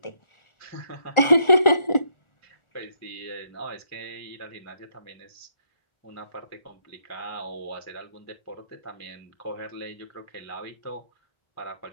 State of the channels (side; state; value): right; late; 1.4 ms